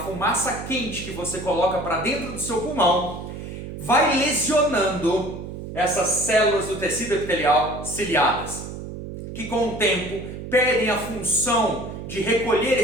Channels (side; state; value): right; noise; hum, 9 dB below the sound